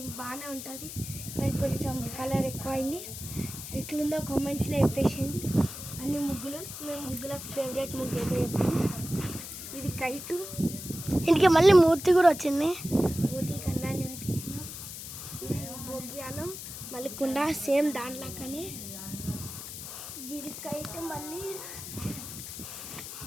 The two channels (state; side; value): noise; left; hiss, 10 dB below the sound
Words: బాగానే ఉంటుంది కానీ కొంచెం కలర్ ఎక్కువైంది. ఎట్లుందో కామెంట్స్లో చెప్పేసింది. అన్ని ముగ్గులు మేము ముగ్గుల ఫేవరెట్ ముగ్గు ఏదో చెప్పాను. ఇది కైటు, ఇంటికి మళ్ళీ మూర్తి కూడా వచ్చింది. మూతి కన్నాన్ని పెట్టినాం. ఇది భోగ్యాలు, మళ్ళీ కుండ సేమ్ దాంట్లోకనే. ఇది కైట్, మళ్ళీ